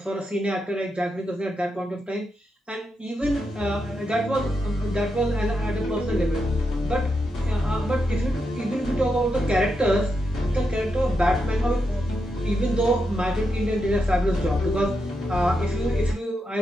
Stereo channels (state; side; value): normal; both; correlation 0.84